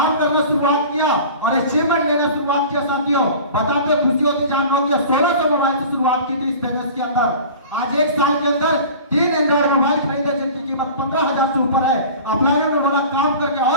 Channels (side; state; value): both; inverted; correlation -0.40